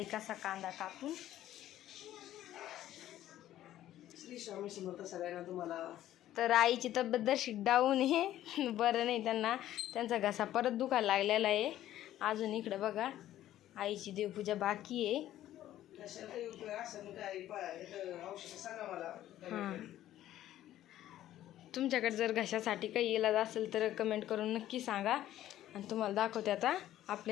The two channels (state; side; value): quieter; right; 13.0 dB